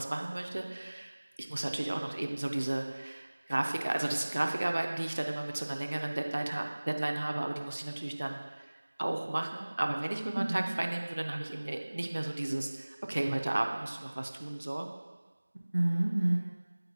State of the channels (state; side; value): inverted; both; correlation -1.00